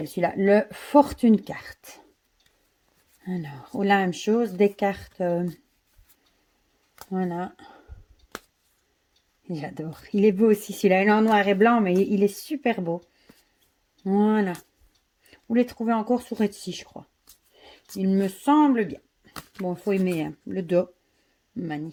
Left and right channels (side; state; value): both; identical; correlation 1.00